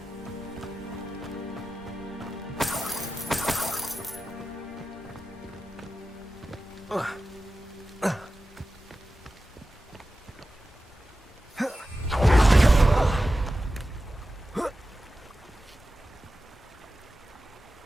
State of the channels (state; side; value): normal; both; correlation 0.93